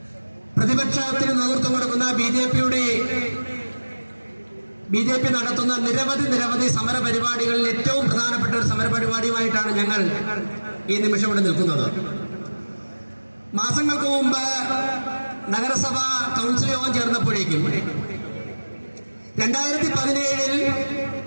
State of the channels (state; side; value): inverted; both; correlation -1.00